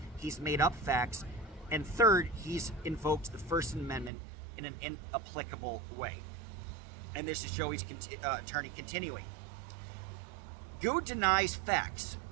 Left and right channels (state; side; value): drops out; left; at 4.1 s